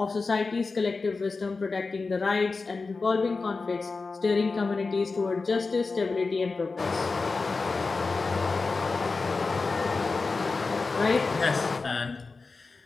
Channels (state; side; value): quieter; right; 4.1 dB